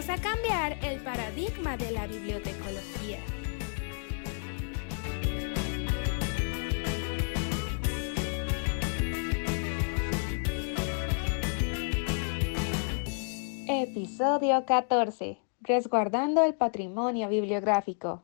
a cambiar el paradigma de la bibliotecología. Episodio 14. Resguardando el patrimonio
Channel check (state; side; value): silent; right; 57 dB below the other